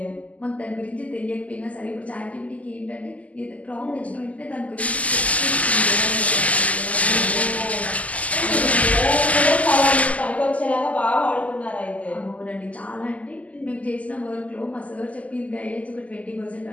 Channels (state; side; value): late; right; 0.071 ms